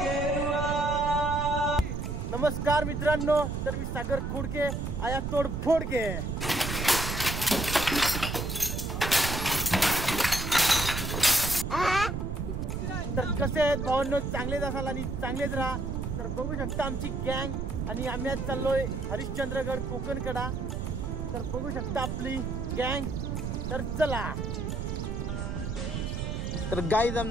नमस्कार मित्रांनो, तर मी सागर खोडके आया तोडफोड के। तर कसे आहेत भावांनो, चांगलेच असाल आणि चांगलेच राहा। तर बघू शकता आमची गँग आणि आम्ही आज चाललोय हरिश्चंद्रगड कोकणकडा। तर बघू शकता आपली गँग। तर चला। तर गाईज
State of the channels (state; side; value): noise; right; rumble, 3 dB below the sound